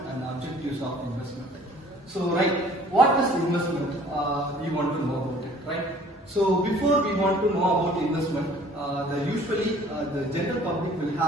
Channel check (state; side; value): normal; both; correlation 0.53